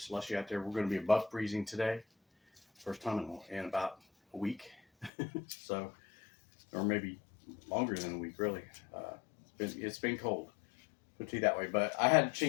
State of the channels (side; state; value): right; drops out; at 5.1 s